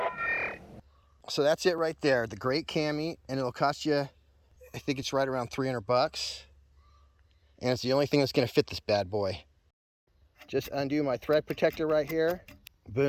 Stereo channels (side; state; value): both; identical; correlation 1.00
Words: So that's it right there, the Great Cami, and it'll cost you, I think it's right around 300 bucks. And it's the only thing that's gonna fit this bad boy. Just undo my thread protector right here.